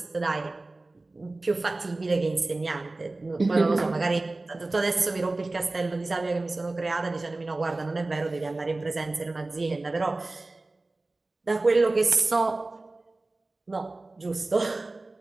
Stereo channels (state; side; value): quieter; left; 3.1 dB